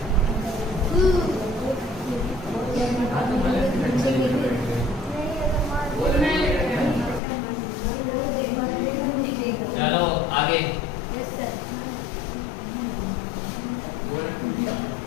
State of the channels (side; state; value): right; drops out; at 7.2 s